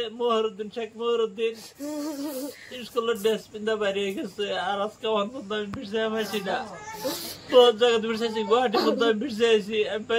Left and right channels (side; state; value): both; identical; correlation 1.00